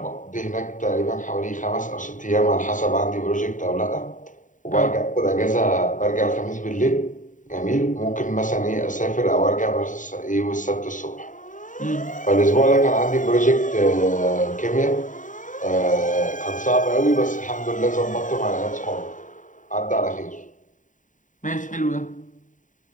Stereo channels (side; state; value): right; late; 0.37 ms